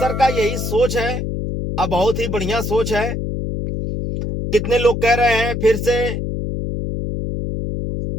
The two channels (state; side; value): noise; left; hum, 3 dB below the sound